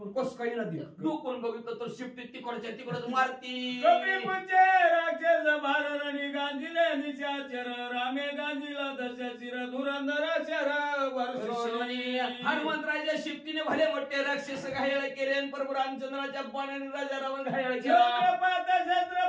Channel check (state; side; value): identical; both; correlation 1.00